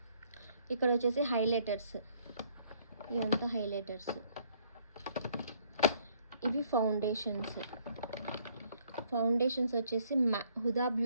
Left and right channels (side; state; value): both; inverted; correlation -0.64